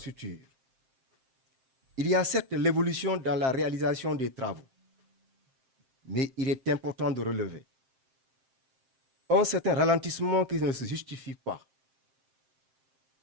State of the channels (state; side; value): late; left; 7.6 ms